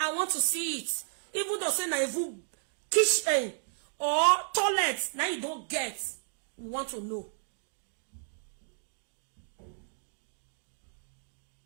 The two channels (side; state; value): left; silent; digital silence